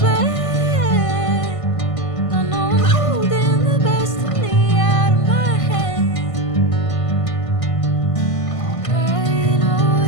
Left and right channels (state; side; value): late; right; 1.5 ms